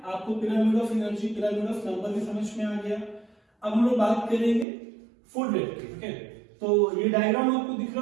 आपको pyramid of energy, pyramid of number भी समझ में आ गया. अब हम लोग बात करेंगे फूड वेब की. ओके, तो ये डायग्राम आपको दिख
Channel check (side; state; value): left; drops out; at 4.7 s